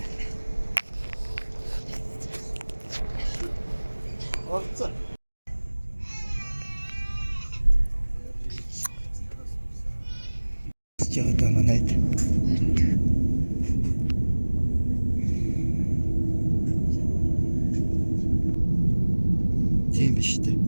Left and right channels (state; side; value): inverted; both; correlation -1.00